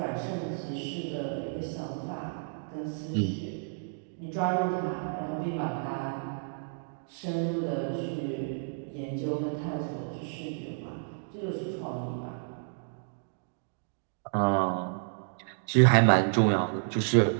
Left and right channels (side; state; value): left; silent; digital silence